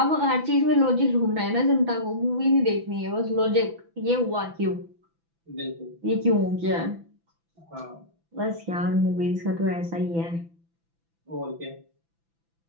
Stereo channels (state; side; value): late; left; 6.0 ms